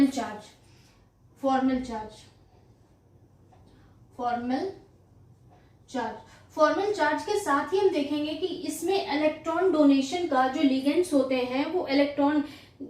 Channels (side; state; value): both; identical; correlation 1.00